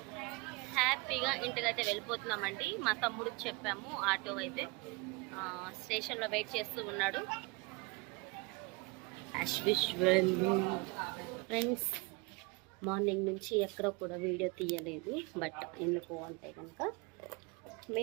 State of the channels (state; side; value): quieter; left; 27.2 dB